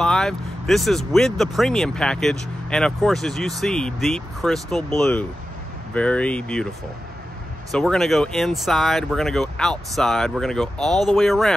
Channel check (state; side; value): normal; both; correlation 0.92